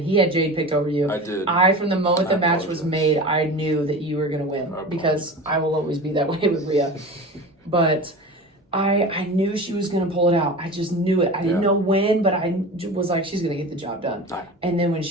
had Jade picked over you. I did. From the moment the match was made, I knew that you were going to win because I will always be that way with Rhea. But I knew she was going to pull it out. I just knew it. I didn't know when, but I was like, she's going to get the job done. And then when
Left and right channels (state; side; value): normal; both; correlation 0.33